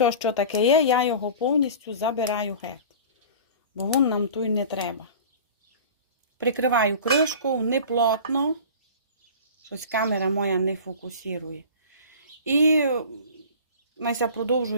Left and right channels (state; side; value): inverted; both; correlation -0.38